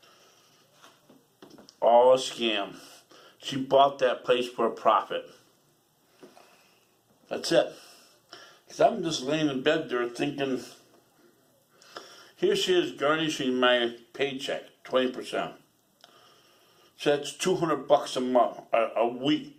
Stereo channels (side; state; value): both; identical; correlation 1.00